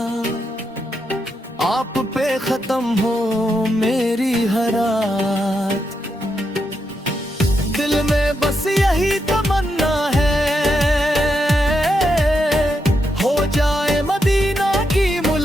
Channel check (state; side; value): normal; both; correlation 0.83